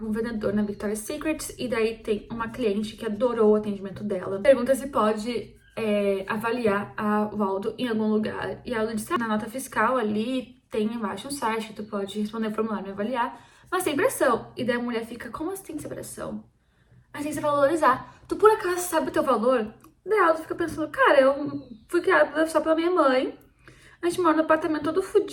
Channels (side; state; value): both; identical; correlation 1.00